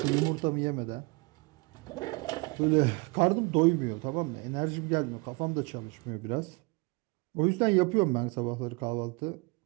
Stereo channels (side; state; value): left; quieter; 28.0 dB